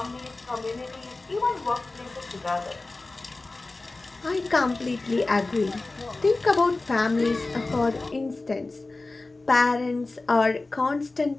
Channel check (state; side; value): quieter; right; 3.3 dB